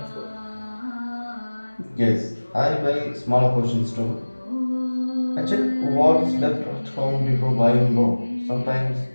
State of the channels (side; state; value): both; inverted; correlation -1.00